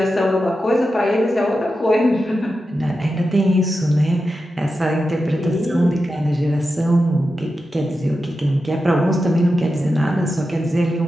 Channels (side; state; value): both; normal; correlation 0.90